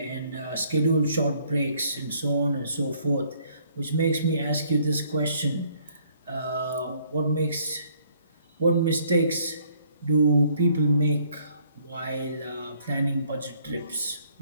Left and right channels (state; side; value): inverted; both; correlation -0.64